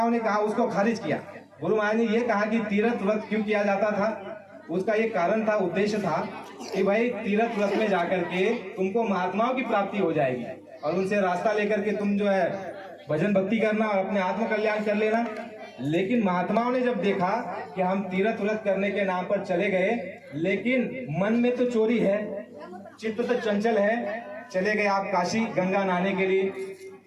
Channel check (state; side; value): identical; both; correlation 1.00